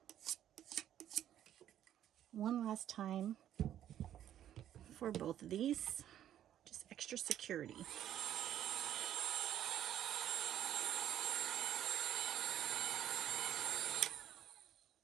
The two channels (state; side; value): quieter; left; 11.1 dB